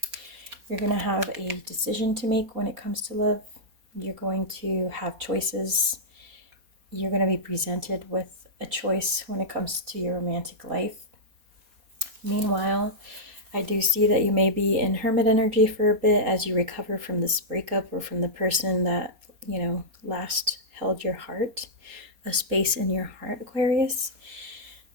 You're going to have a decision to make when it comes to love. You're going to have choices. You're going to be presented with a choice when it comes to your romantic life. Meanwhile, I do see that you may be in hermit energy for a bit as you recover from this breakup or from the person that, you know, last held your heart, a space in your heart, Aquarius.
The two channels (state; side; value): late; left; 4.2 ms